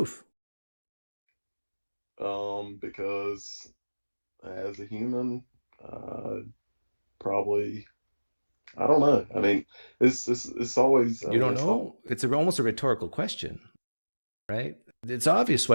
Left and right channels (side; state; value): both; inverted; correlation -1.00